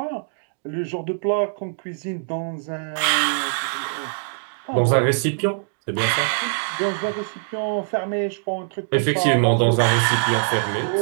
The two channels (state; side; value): silent; left; digital silence